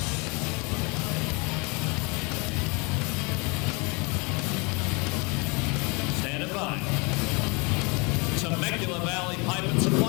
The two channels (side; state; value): right; quieter; 29.5 dB